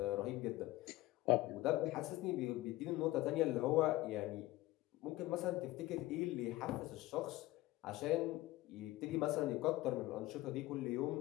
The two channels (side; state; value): right; quieter; 17.8 dB